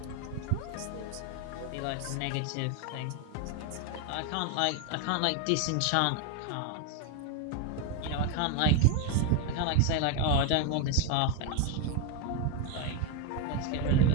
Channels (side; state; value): both; different; correlation 0.02